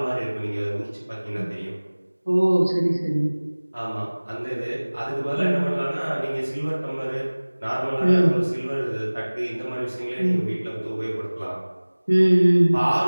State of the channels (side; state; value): both; inverted; correlation -1.00